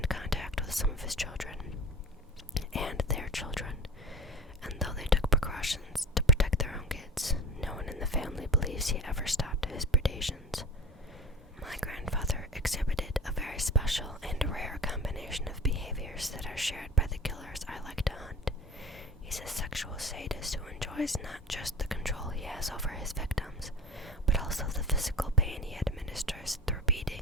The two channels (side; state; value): both; normal; correlation 0.36